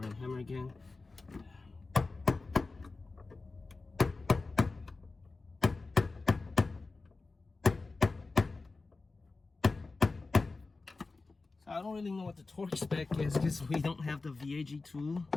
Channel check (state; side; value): quieter; right; 3.7 dB